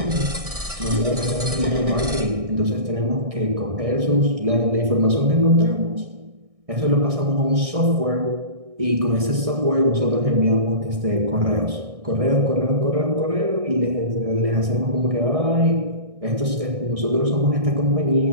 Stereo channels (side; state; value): left; late; 1.6 ms